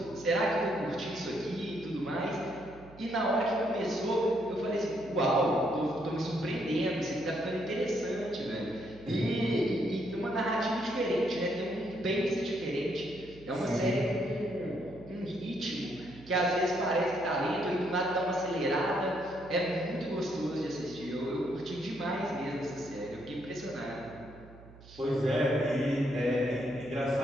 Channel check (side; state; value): right; noise; hum, 20 dB below the sound